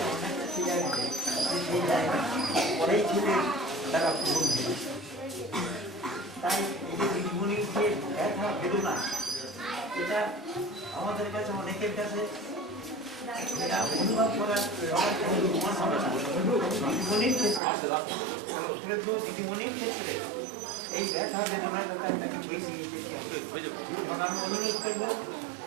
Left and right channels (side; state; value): left; drops out; at 17.6 s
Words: অনেকটা ছিল সেই জায়গা পরেই ছিল তারা পূরণ হয়ে। তাই এই যে দিদিমণির যে ব্যথা বেদনা, এটা আমাদের কাছে অনেকের কাছে এটা অনুভব করার দিদিমণির ক্ষেত্রে, দিদিমণির ক্ষেত্রে এই ব্যথা বেদনার কথা তাকে বেশি আমি অনুরোধ করবো